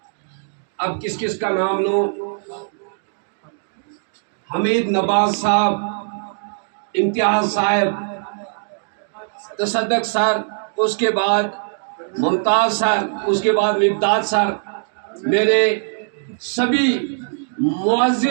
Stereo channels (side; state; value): left; silent; digital silence